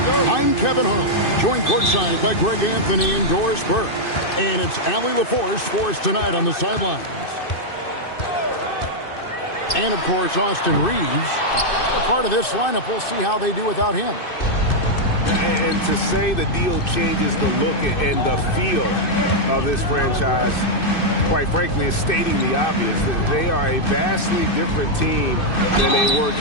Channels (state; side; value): late; right; 2.6 ms